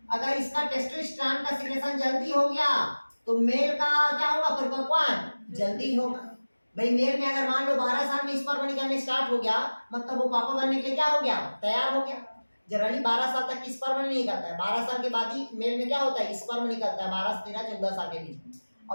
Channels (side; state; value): both; inverted; correlation -1.00